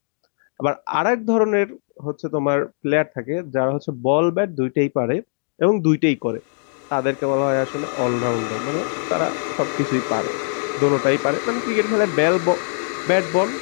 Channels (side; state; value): right; silent; digital silence